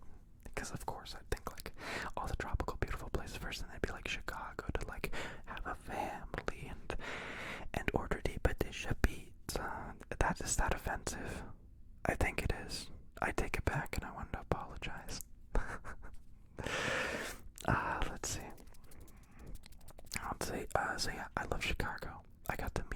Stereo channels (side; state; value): both; identical; correlation 1.00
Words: Because of course I'd think like person. They'd be like Chicago to like have a family and order the patisha pizza. Is that offensive? I think it is. I take it back and I want to apologize. Let's see. So yeah, I love Chicago. I got to